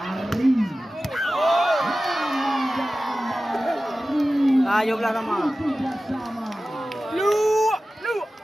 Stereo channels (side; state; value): both; normal; correlation 0.95